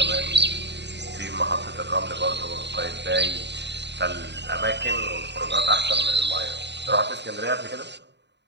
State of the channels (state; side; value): late; left; 0.50 ms